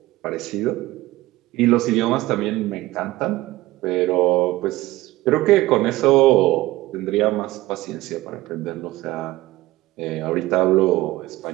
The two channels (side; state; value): left; quieter; 18.0 dB